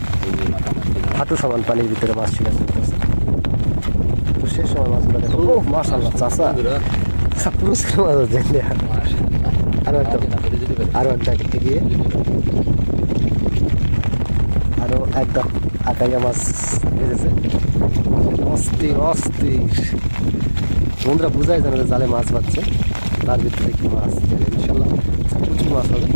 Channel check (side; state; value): both; inverted; correlation -1.00